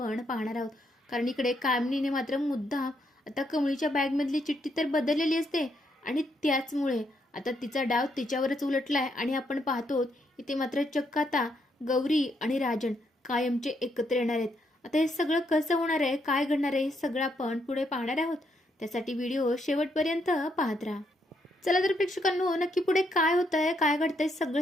पाहणार आहोत. कारण इकडे कामिनीने मात्र मुद्दाम आता कमळीच्या बॅगमधली चिठ्ठी तर बदललेली असते आणि त्याचमुळे आता तिचा डाव तिच्यावरच उलटलाय आणि आपण पाहतो इथे मात्र चक्क आता गौरी आणि राजन कायमचे एकत्र येणार आहेत. आता हे सगळं कसं होणार आहे, काय घडणार आहे, हे सगळं आपण पुढे पाहणार आहोत. त्यासाठी व्हिडिओ शेवटपर्यंत पाहत राहा. चला तर प्रेक्षकांनो, नक्की पुढे काय होत आहे, काय घडतंय,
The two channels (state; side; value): normal; both; correlation 0.76